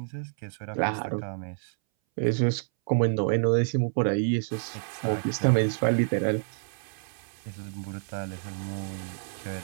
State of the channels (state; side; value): silent; left; 59 dB below the other